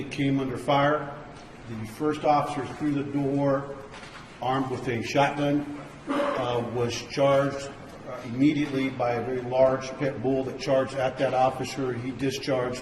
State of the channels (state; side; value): identical; both; correlation 1.00